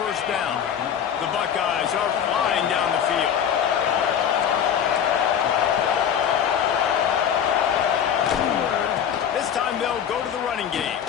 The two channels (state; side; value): quieter; right; 8.7 dB